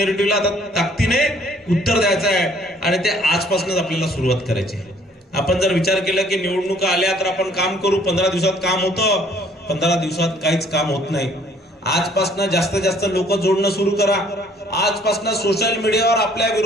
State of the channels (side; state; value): both; normal; correlation 0.60